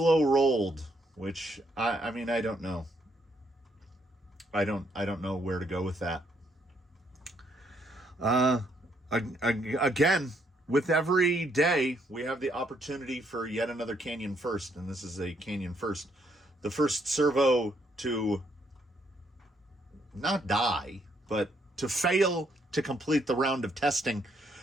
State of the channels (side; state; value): both; normal; correlation 0.72